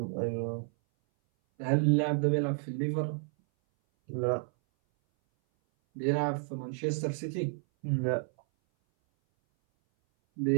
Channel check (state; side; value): silent; left; 57 dB below the other